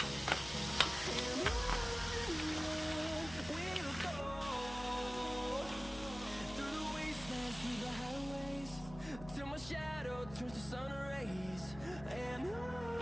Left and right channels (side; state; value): left; noise; hum, 14 dB below the sound